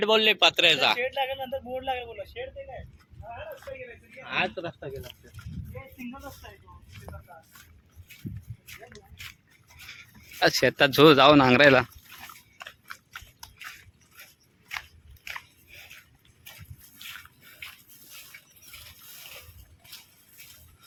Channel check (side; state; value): both; identical; correlation 1.00